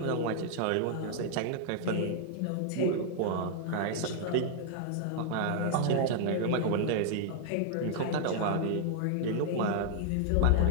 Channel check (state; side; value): different; both; correlation -0.01